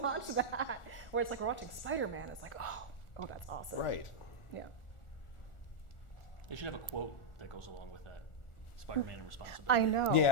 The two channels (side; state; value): right; late; 1.4 ms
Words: that? Where it's like, we're watching Spider-Man. It's like, oh, that's awesome. Right. Yeah. They should have a quote that goes along with that. Spider-Man and responsibility. I know.